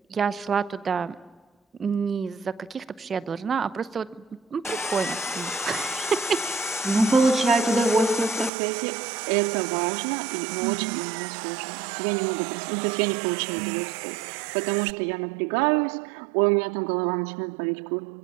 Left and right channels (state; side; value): drops out; left; at 8.5 s